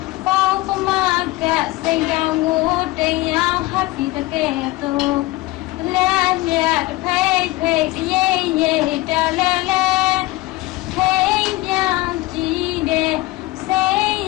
ပေါင်းပမကစိတ်ကြောင်ကိုတင်ရောက်ဟပ်ပြီးတကဲ့သို့လက်မြတ်ဖိတ်ဖိတ်ရေးရေးတလဲလဲထိန်ပြောင်းကြည့်တဲ့စိတ်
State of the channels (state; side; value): quieter; right; 19.4 dB